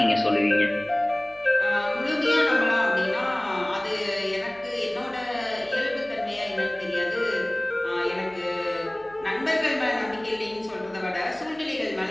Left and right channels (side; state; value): left; noise; hum, 28 dB below the sound